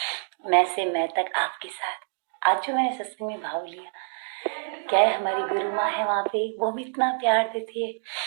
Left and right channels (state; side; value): silent; left; digital silence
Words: मैं से मैं तक आपके साथ। आज जो मैंने सत्संग में भाव लिया, क्या है, हमारी गुरु माँ है वहाँ पे, वो भी इतना प्यार देती है,